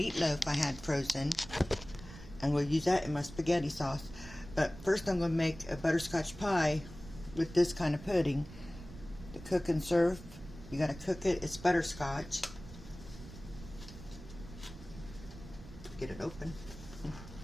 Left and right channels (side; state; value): right; noise; rumble, 15 dB below the sound